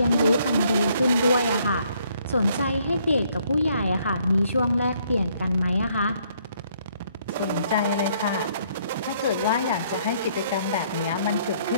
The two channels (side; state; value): both; inverted; correlation -0.67